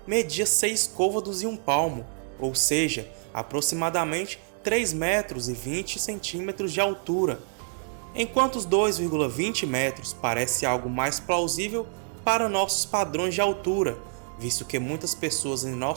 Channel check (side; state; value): left; silent; digital silence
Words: media 6 côvados e 1 palmo, ou seja, aproximadamente 3 metros e 20 centímetros de altura, enquanto os 2,20 metros parece algo mais plausível para nossos padrões de altura, visto que muitas pessoas em